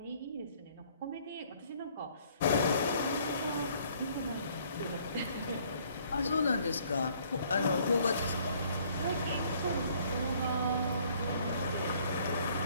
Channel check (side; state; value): both; inverted; correlation -0.61